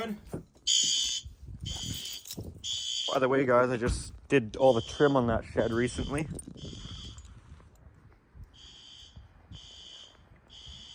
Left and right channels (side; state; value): both; identical; correlation 1.00